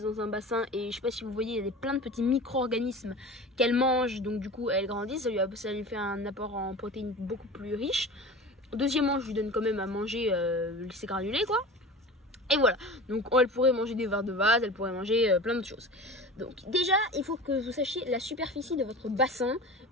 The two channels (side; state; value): both; normal; correlation 0.34